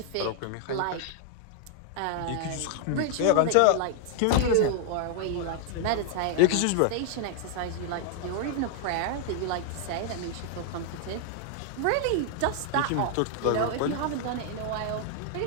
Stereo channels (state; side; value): different; both; correlation 0.00